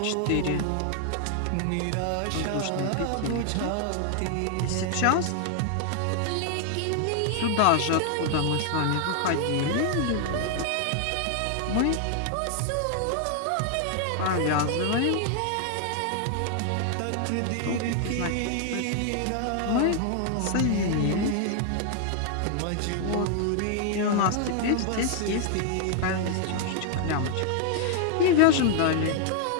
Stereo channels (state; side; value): different; both; correlation 0.00